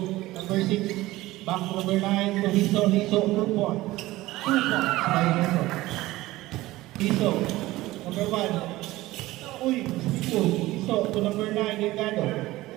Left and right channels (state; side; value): quieter; left; 17.8 dB